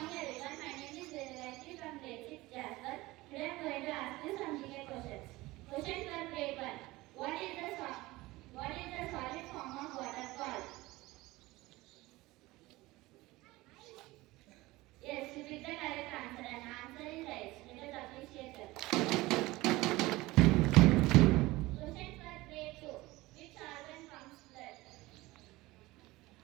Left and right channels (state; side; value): quieter; left; 19.8 dB